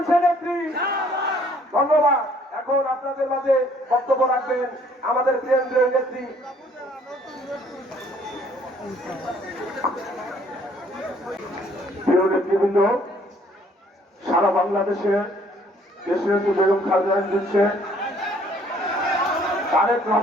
ধন্যবাদ। এখন আপনাদের মাঝে বক্তব্য রাখবেন আমাদের কেন্দ্রীয় নেত্রী প্রিয় নেতৃবৃন্দ, সারা বাংলাদেশে দেশের যে বেগম খালেদা দিচ্ছে তারেক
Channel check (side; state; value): both; normal; correlation 0.61